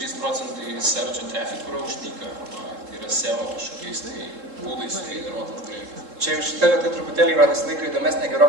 searcho traffic yra uždyka, tai yra SEO kažkokiais būdais sugeneruotas dalykas. Čia jau šitą vietą truputėlį yra visą laiką įdomesnė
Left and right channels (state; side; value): late; left; 3.7 ms